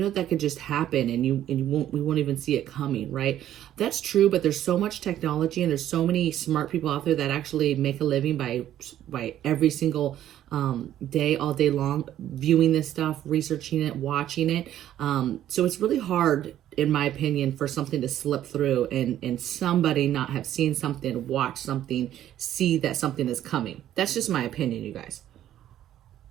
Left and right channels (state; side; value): quieter; left; 11.9 dB